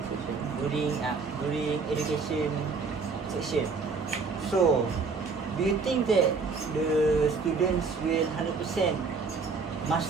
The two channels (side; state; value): left; quieter; 4.6 dB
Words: education section. So, do you think that the students will 100%